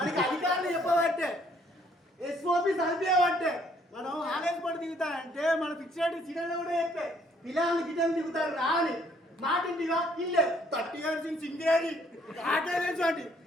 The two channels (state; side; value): normal; both; correlation 0.64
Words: అధికారులు చెప్పబట్టే ఎస్ఓపి చదివేవంటే మనం ఆలయం పడి దిగుతానంటే మన ఫిక్స్డ్ సిగ్నల్ కూడా చెప్పే పిల్లలు గిన్నెలు దిగుతారు రాని మాటింటిగా ఇల్లే 30 years ఇన్ సింగేరి ఆటేలేంటి